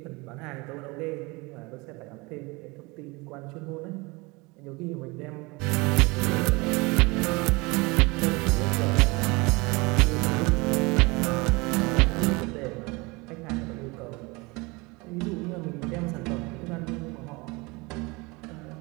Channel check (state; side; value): quieter; left; 25.4 dB